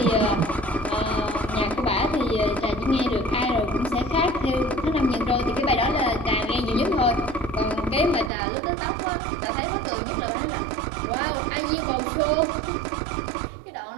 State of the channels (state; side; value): drops out; left; at 8.3 s